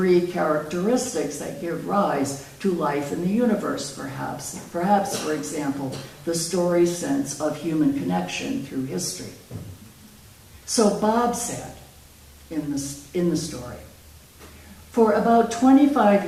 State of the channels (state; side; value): identical; both; correlation 1.00